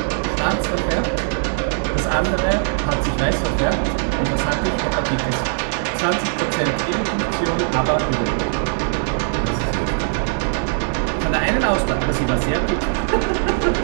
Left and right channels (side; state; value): left; silent; digital silence